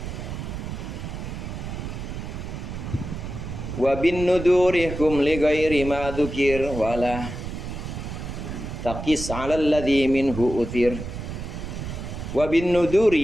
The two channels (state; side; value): noise; right; rumble, 7 dB below the sound